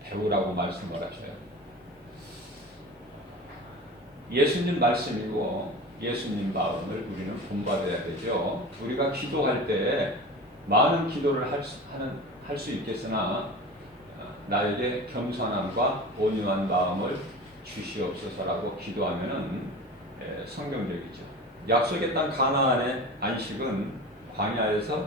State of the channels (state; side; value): normal; both; correlation 0.33